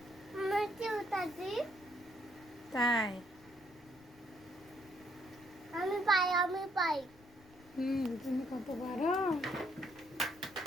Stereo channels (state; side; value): noise; left; rumble, 26 dB below the sound